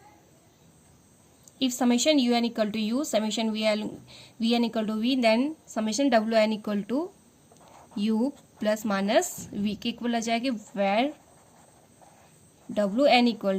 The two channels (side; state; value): both; identical; correlation 1.00